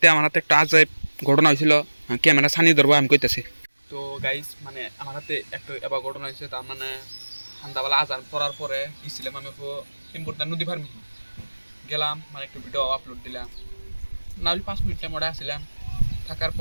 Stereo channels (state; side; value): inverted; both; correlation -1.00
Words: আমার হাতে একটা আজাইব ঘটনা হয়েছিল, ক্যামেরা ছানি ধরবো আমি কইতেছি। তো গাইস মানে আমার হাতে একটা এবার ঘটনা হয়েছে। তার মানে সন্ধ্যাবেলা আজান পড়ার পরে গেছিলাম আমি ইম্পর্টেন্ট নদী ফার্মি গেলাম, মানে একটু ভিডিও আপলোড দিলাম। না হলে 5 মিনিট টাইম ওটা আসছিলাম। থাকার